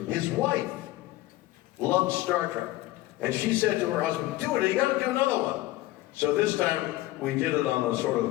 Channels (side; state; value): right; quieter; 17.3 dB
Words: his wife loved Star Trek. And she said to her husband, do it, you gotta do another one. So this time we did it on a sort